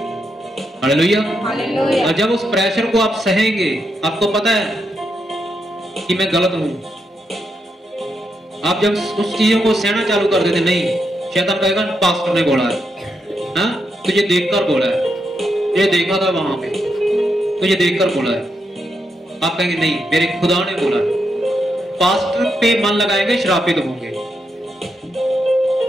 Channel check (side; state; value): both; normal; correlation 0.82